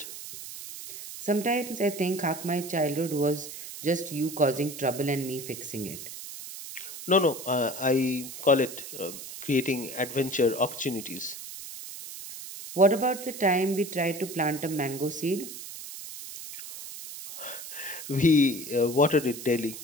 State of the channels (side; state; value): right; noise; hiss, 11 dB below the sound